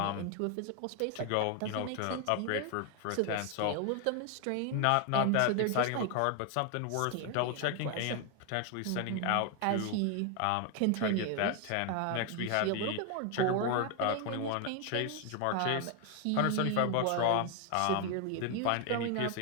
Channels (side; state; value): both; different; correlation 0.01